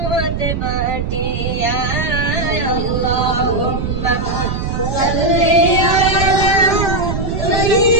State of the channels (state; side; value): noise; right; rumble, 3 dB below the sound